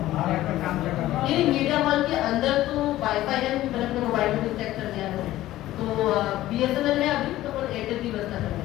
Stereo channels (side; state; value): right; quieter; 15.1 dB